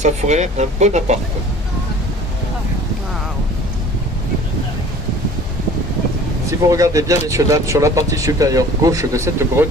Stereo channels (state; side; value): normal; both; correlation 0.47